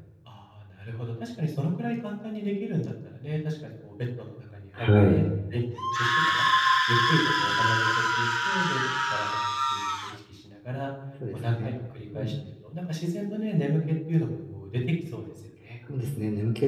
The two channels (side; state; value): both; identical; correlation 1.00